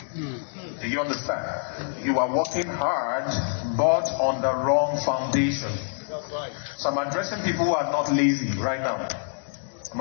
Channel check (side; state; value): right; silent; digital silence